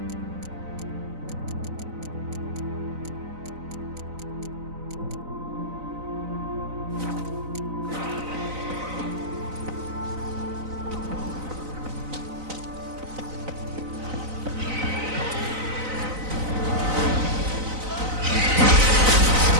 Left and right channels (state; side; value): late; left; 4.0 ms